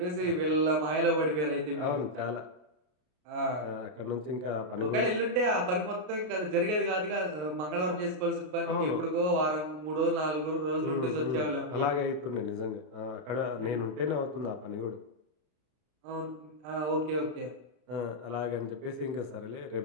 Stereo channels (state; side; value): late; left; 33 ms